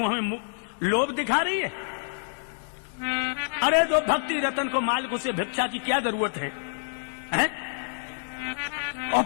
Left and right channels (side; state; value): right; silent; digital silence